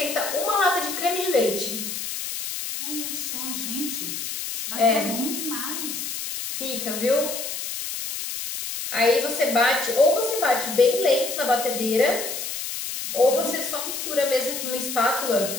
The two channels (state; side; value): noise; left; hiss, 5 dB below the sound